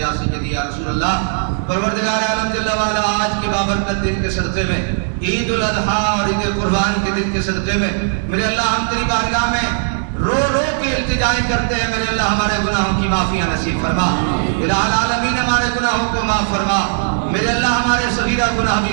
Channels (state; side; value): silent; left; digital silence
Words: سیدی یا رسول اللہ۔ پروردگار عالم جل وعلا آج کے بابرکت دن کے صدقے میں، عید الاضحیٰ اور عید قربان کے دن کے صدقے میں میرے اللہ ہم تیری بارگاہ میں رو رو کے التجائیں کرتے ہیں، میرے اللہ ہمارے گناہوں کی معافیاں نصیب فرما، الہ العالمین ہمارے گناہوں کو معاف فرما، میرے اللہ ہمارے صغیرہ گناہ